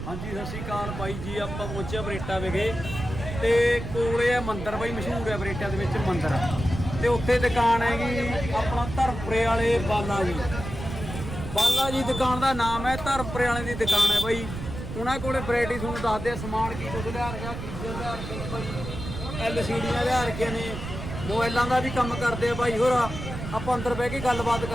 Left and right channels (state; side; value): noise; right; rumble, 7 dB below the sound